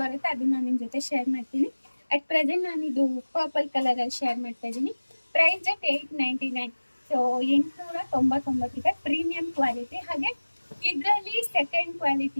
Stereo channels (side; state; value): both; inverted; correlation -1.00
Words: ಬರುತ್ತೆ, ಅದನ್ನ ನಾನು ನಿಮ್ಮ ಜೊತೆ ಶೇರ್ ಮಾಡ್ತೀನಿ. ಅಟ್ ಪ್ರೆಸೆಂಟ್ ನಾನು ಇದು ಪರ್ಪಲ್ ಕಲರಲ್ಲಿ ಶೇರ್ ಮಾಡ್ತಾ ಇದ್ದೀನಿ. Price at 899. ಸೊ 899 ಇದೆ. Premium quality. ಹಾಗೆ ಇದರಲ್ಲಿ ಸೆಕೆಂಡ್